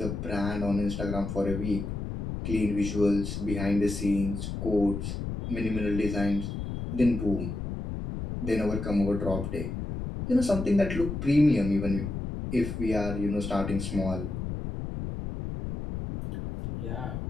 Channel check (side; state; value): left; noise; rumble, 5 dB below the sound